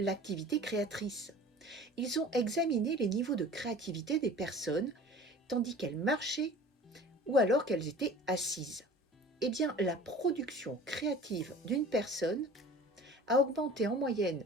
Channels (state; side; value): normal; both; correlation 0.43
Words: créatrice. Ils ont examiné les niveaux de créativité des personnes tandis qu'elles marchaient ou alors qu'elles étaient assises. La production créative d'une personne a augmenté en moyenne